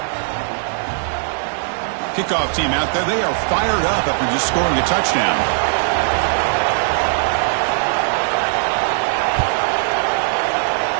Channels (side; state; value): left; silent; digital silence